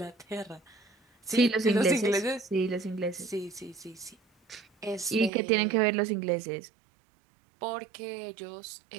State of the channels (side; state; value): left; drops out; at 5.3 s